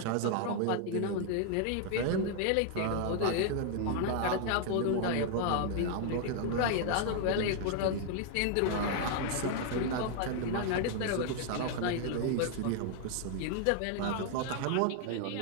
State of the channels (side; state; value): both; different; correlation 0.00